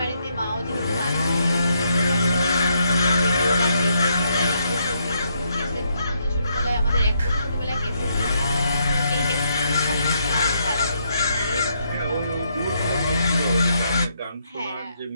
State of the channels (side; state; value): both; inverted; correlation -0.76